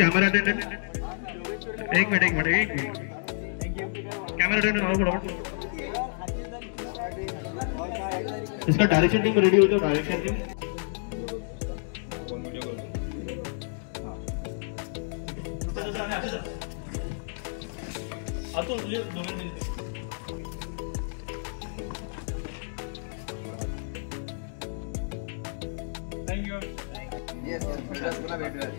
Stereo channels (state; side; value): silent; right; digital silence